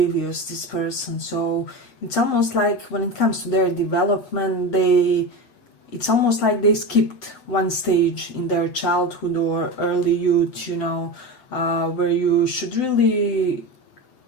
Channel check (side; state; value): right; late; 7.8 ms